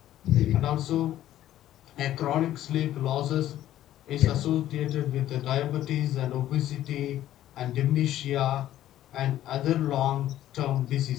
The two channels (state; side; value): quieter; right; 12.9 dB